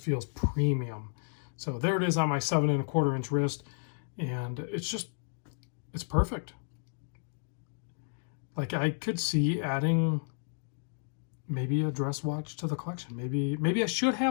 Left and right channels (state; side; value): silent; right; digital silence